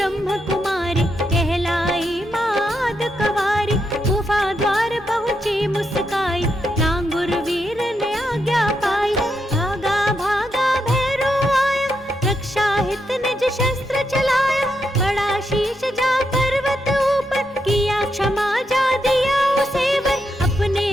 कुमारी, कहलाई माद कवारी, गुफा द्वार पहुंची मुस्काई, लांगुर वीर ने आज्ञा पाई, भागा भागा भैरो आया, रक्षा हित निज शस्त्र चलाया, बड़ा शीश जा पर्वत ऊपर, किया क्षमा जा दिया उसे वर, अपने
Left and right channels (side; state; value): both; normal; correlation 0.82